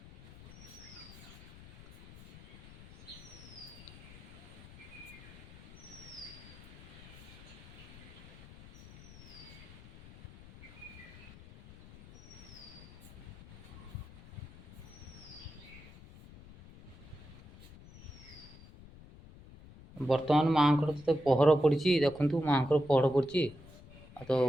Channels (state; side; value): noise; left; rumble, 18 dB below the sound